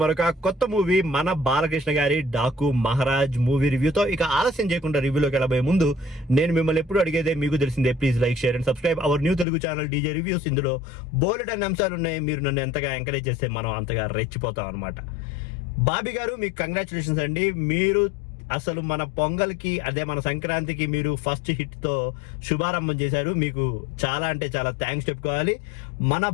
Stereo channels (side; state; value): right; drops out; at 9.5 s